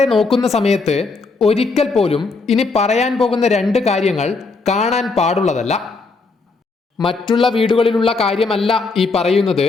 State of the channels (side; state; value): right; quieter; 4.0 dB